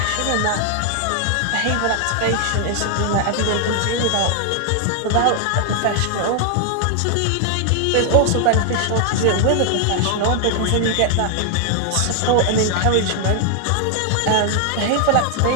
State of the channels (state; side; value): different; both; correlation 0.00